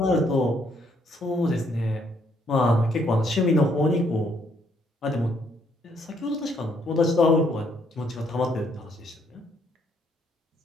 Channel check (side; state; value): both; normal; correlation 0.70